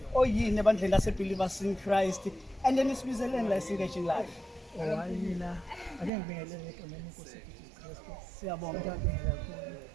oyini ebandleni lase believers in Christ. And then isibizeleni la engaging live. Mina ake ngibingelele egameni lenkosi Jesus Christ. Siyabonga. Ngiyabingelela kakhulu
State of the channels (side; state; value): left; drops out; at 6.1 s